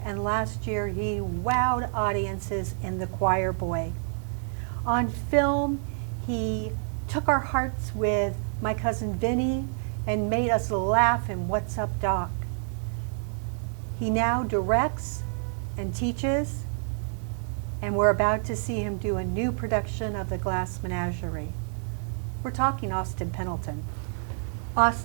and last year he wowed audiences in The Choir Boy. On film, he took our hearts with My Cousin Vinny and made us laugh in What's Up, Doc? He now directs and teaches, and we're about to see him do a new production of The Glass Menagerie. We're talking Austin Pendleton.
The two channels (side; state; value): left; silent; 59 dB below the other